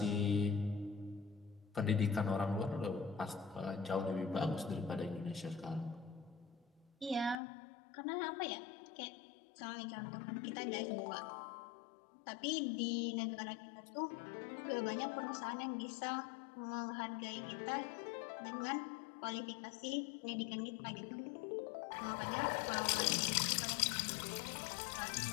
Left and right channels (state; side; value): drops out; right; at 7.4 s